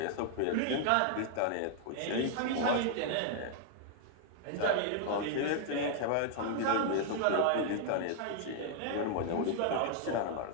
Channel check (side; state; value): both; different; correlation 0.00